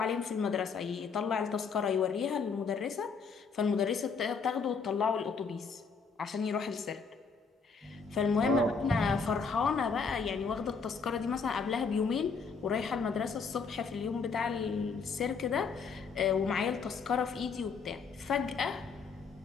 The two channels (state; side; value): quieter; right; 5.2 dB